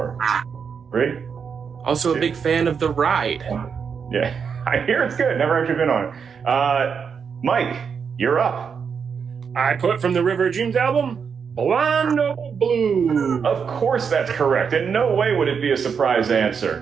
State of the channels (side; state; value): left; quieter; 6.4 dB